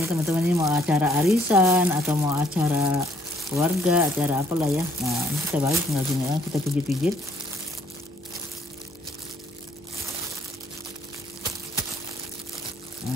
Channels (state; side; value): normal; both; correlation 0.65